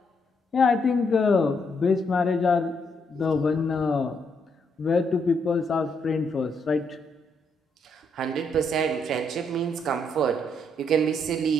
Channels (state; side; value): normal; both; correlation 0.75